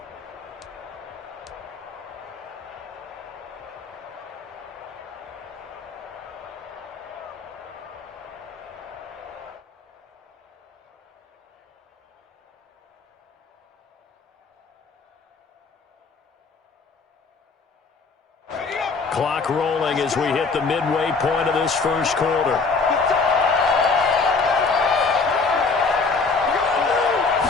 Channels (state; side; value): quieter; right; 4.4 dB